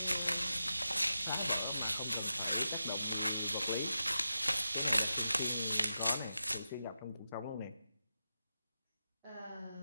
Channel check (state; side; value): inverted; both; correlation -0.89